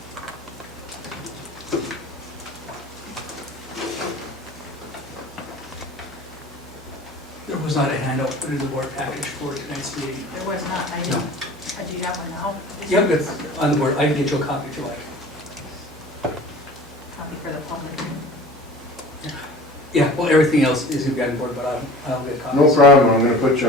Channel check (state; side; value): normal; both; correlation 0.41